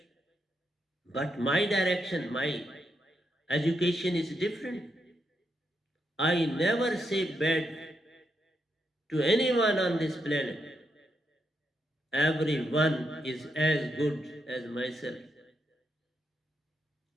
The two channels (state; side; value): normal; both; correlation 0.81